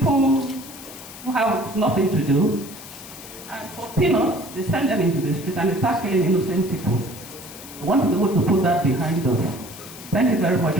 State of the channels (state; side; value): noise; left; hiss, 15 dB below the sound